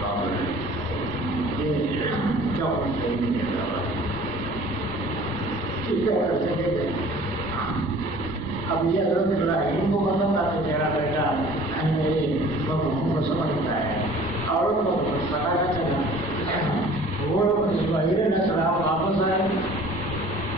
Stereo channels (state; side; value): normal; both; correlation 0.49